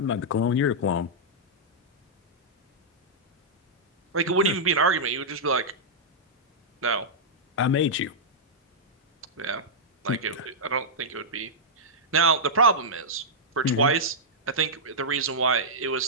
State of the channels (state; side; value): normal; both; correlation -0.09